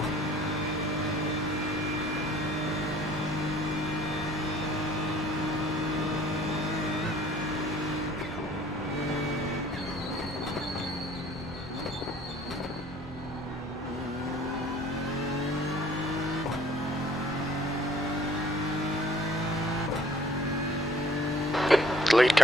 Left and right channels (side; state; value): both; normal; correlation 0.56